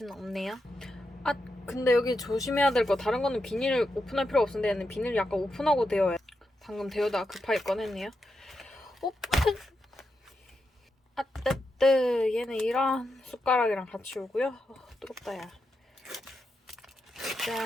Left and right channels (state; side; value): normal; both; correlation 0.86